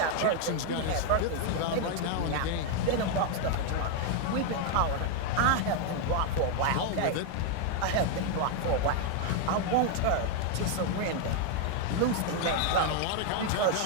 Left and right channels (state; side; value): different; both; correlation 0.01